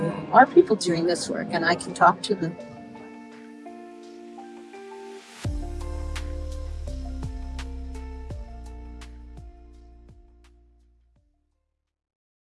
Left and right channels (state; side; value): identical; both; correlation 1.00